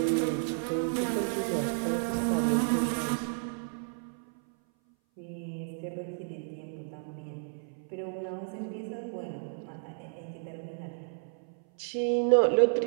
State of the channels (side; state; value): left; silent; 57 dB below the other